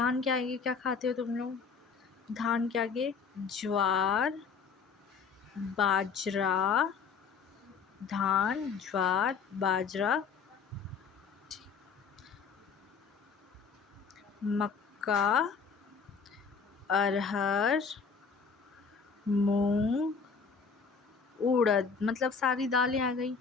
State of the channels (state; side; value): quieter; right; 5.6 dB